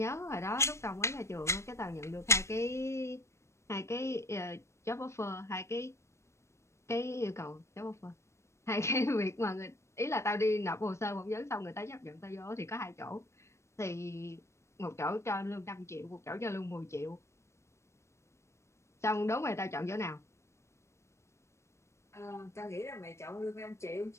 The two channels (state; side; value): late; right; 0.13 ms